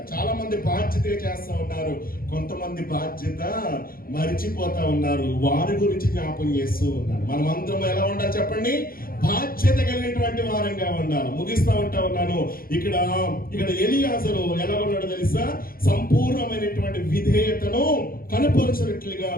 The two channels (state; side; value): late; right; 0.42 ms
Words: చాలా మంది బాధ్యతగా చేస్తా ఉన్నారు, కొంతమంది బాధ్యత మరిచిపోతా ఉన్నారు. వారి గురించి జ్ఞాపం చేస్తూ ఉన్నారు. మనం అందరం ఎలా ఉండాలి చెప్పండి? బాధ్యత కలిగినటువంటి వారంగా ఉండాలి. ముగిస్తా ఉన్నాను. ఇక్కడ ఎలియాజరు ఎలా ఉన్నాడో తెలుసా? సంపూర్ణమైనటువంటి విధేయతను కనపరచినట్లుగా